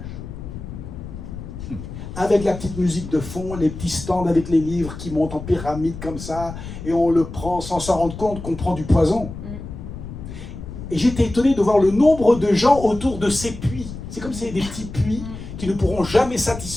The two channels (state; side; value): noise; left; rumble, 10 dB below the sound